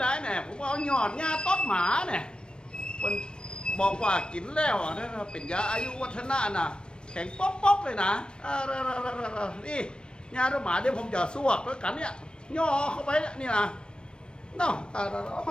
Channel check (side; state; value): right; late; 0.054 ms